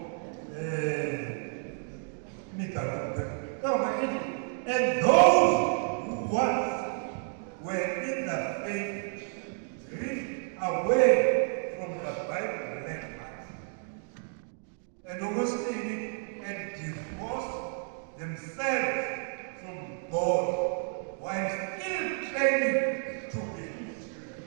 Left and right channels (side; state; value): left; silent; 55 dB below the other